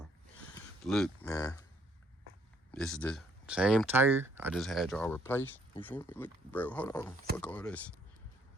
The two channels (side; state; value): both; normal; correlation 0.66